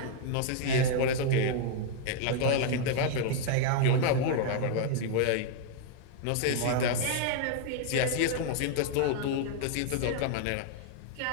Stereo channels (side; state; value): both; different; correlation 0.00